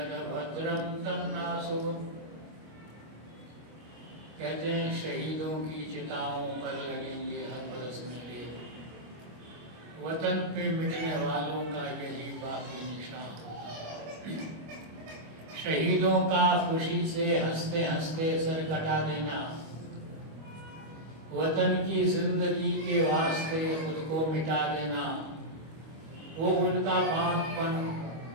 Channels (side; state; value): left; late; 25 ms